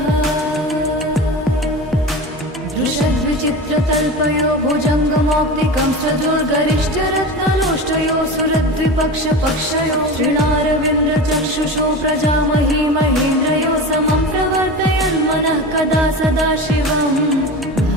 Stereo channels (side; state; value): both; normal; correlation 0.29